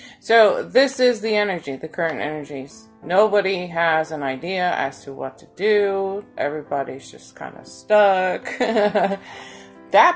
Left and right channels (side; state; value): both; identical; correlation 1.00